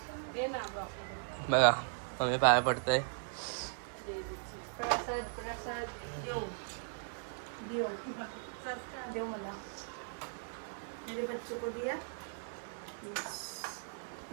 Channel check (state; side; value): silent; left; digital silence